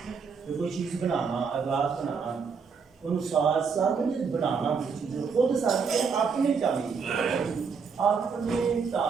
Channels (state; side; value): quieter; left; 5.7 dB